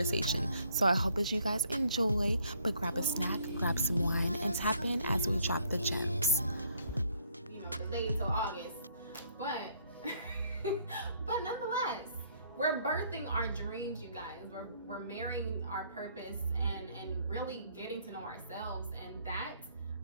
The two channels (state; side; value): inverted; both; correlation -0.66